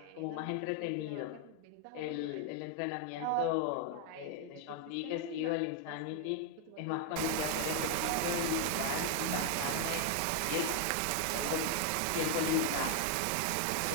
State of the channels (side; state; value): both; different; correlation 0.00